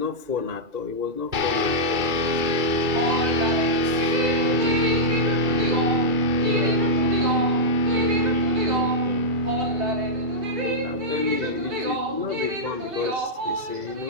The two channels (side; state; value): left; late; 2.7 ms